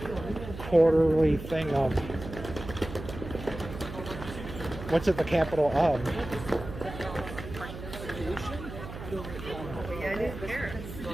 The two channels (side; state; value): right; noise; hum, 11 dB below the sound